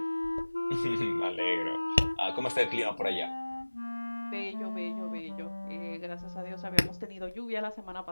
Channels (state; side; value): inverted; both; correlation -1.00